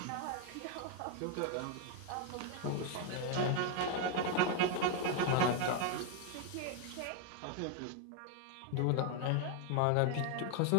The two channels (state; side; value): different; both; correlation 0.01